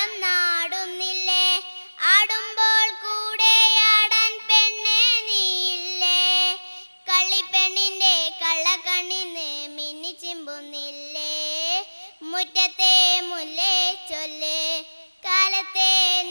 നാടുന്നില്ലേ ആടുമ്പോൾ കൂടെ ആടാൻ പെണ്ണെ നീയില്ലേ കള്ളിപ്പെണ്ണിൻ്റെ കള്ളക്കണ്ണിന്ന് മിന്നി ചിമ്പുന്നില്ലേ മുറ്റത്തെ മുല്ലേ ചൊല്ലേ കാലത്തെ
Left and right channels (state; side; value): inverted; both; correlation -1.00